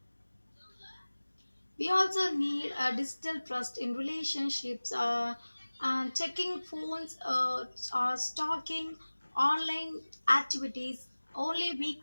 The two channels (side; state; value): both; inverted; correlation -1.00